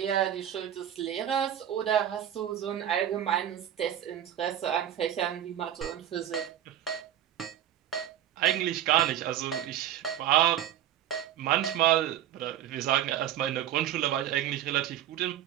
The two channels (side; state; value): left; quieter; 11.2 dB